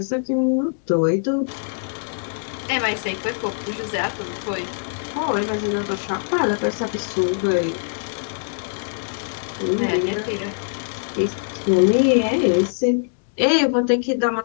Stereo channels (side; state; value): right; silent; digital silence